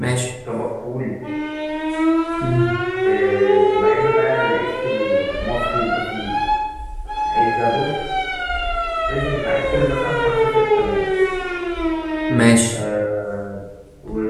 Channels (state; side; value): identical; both; correlation 1.00